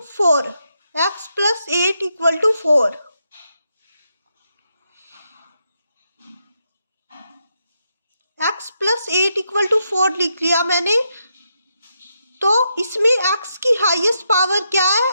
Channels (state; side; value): inverted; both; correlation -0.82